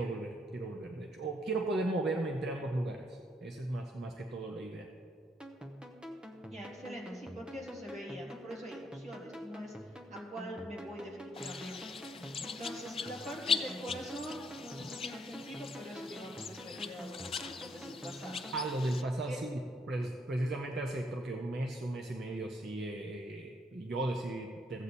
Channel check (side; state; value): both; normal; correlation 0.72